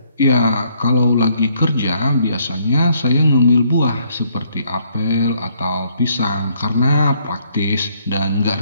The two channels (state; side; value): inverted; both; correlation -0.68